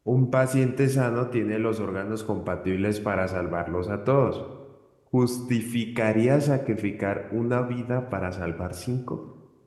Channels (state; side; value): identical; both; correlation 1.00